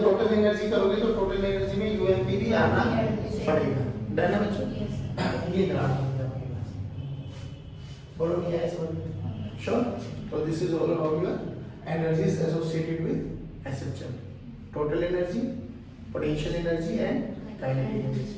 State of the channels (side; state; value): both; identical; correlation 1.00